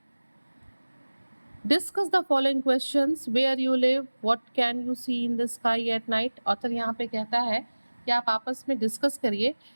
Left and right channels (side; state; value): both; inverted; correlation -1.00